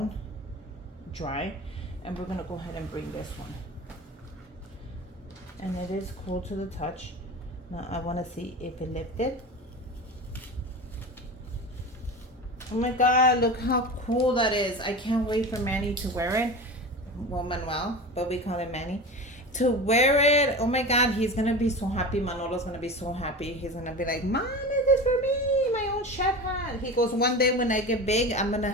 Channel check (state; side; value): normal; both; correlation 0.30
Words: dry, and we're gonna go ahead and bring this one. And it is cool to the touch. Now I want to see if it lifted. Oh my God, look how cool that is. I can't wait for Manny to wear it. Well, Manuel, but we call him Manny, to wear it. Oh my God, he's gonna be so happy. Manolo's gonna be so happy. He's gonna be like, Mom, is this for me? My own chef hat. He goes, one day when I get big, I'm gonna